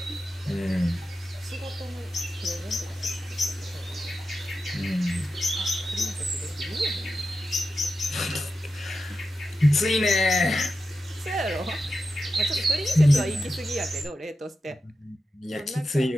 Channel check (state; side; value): normal; both; correlation 0.90